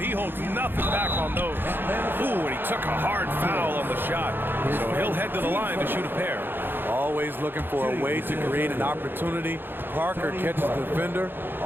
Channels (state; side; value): late; left; 0.099 ms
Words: holds nothing back on those. Ooh, and he took a hard foul on the shot. So he'll head to the line to shoot a pair. Always looking for a way to create an opportunity. Parker catches the defender